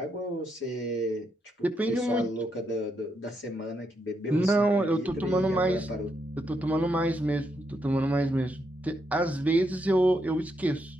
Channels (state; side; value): normal; both; correlation 0.80